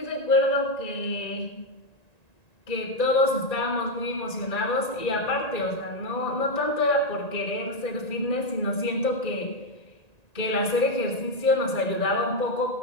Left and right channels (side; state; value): right; late; 1.9 ms